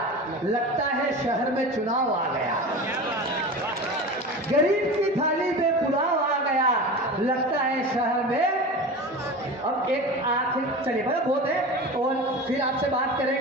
लगता है शहर में चुनाव आ गया। गरीब की थाली में पुलाव आ गया, लगता है शहर में। अब एक आखिर चलिए बड़ा बहुत है और फिर आपसे बात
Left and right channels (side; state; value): both; normal; correlation 0.31